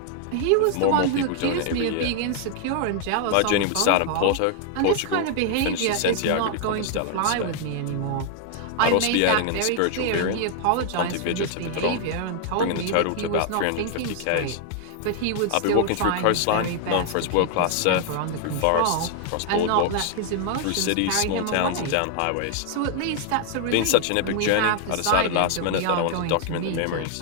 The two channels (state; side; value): different; both; correlation 0.00